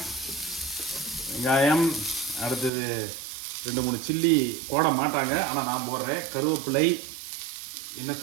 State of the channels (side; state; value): left; drops out; at 2.7 s